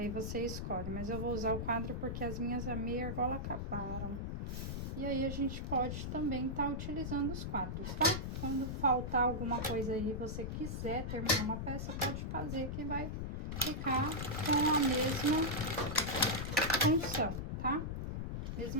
você escolhe, mas eu vou usar o quadro porque as minhas meia argola acabaram. E aí a gente pode também estar utilizando os quadros, tá? Quando faltar alguma coisa aí e você quiser terminar uma peça, pode fazer que vai ficar com a mesma função, tá?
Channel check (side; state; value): left; noise; rumble, 3 dB below the sound